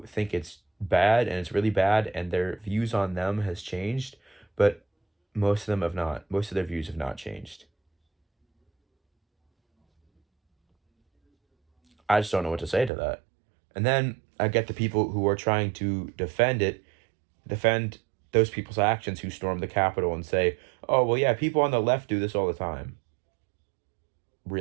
it's bad and it's really bad, and their views on them has changed, but most of them have not. Most of their views have not changed. I just don't know what to say to that. And then I get the people who are trying to defend those people's actions who stormed the Capitol and say, oh, well, yeah, people on the left do this all the time.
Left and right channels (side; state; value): left; drops out; at 12.9 s